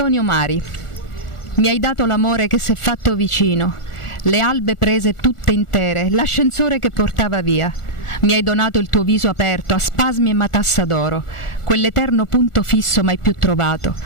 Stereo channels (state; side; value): late; right; 1.4 ms